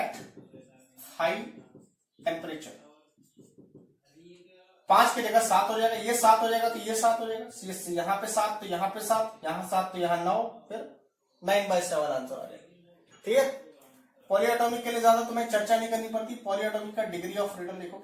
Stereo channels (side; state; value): both; identical; correlation 1.00